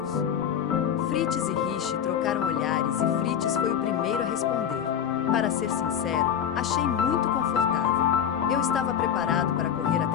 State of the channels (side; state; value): right; quieter; 8.8 dB